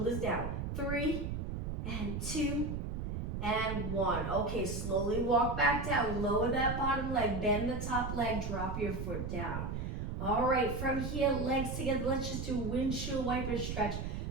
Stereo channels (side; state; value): right; noise; rumble, 3 dB below the sound